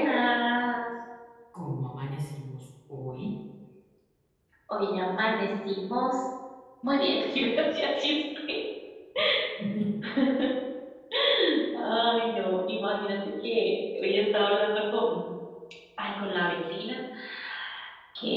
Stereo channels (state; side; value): identical; both; correlation 1.00